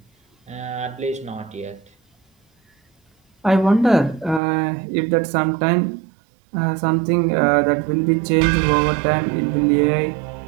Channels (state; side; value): drops out; left; at 4.4 s